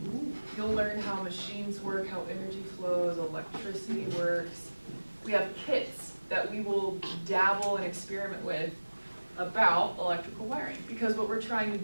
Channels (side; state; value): both; inverted; correlation -1.00